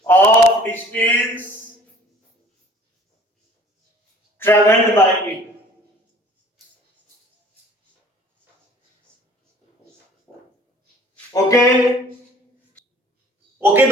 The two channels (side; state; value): both; normal; correlation 0.52